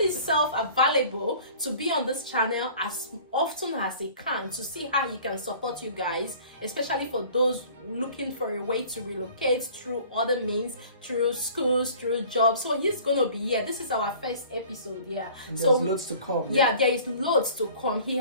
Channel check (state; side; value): inverted; both; correlation -0.47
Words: available to be on this channel as often as he can, to see how he can support you guys, especially for those looking for a way to relocate through other means, through schools, through jobs. So he's gonna be here. This is our first episode here. And so there's loads to come. Yeah, there is loads to come. He